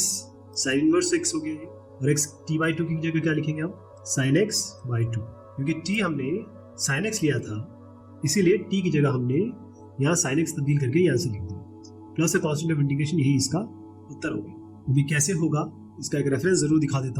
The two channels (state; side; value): identical; both; correlation 1.00